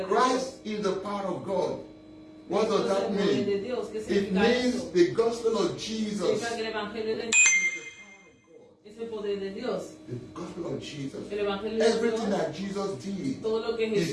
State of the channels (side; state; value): both; identical; correlation 1.00